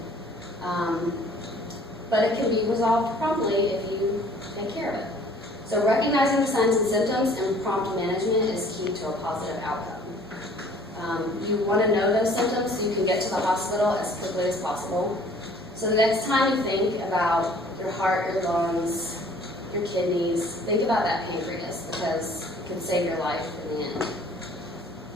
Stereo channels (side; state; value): both; normal; correlation 0.54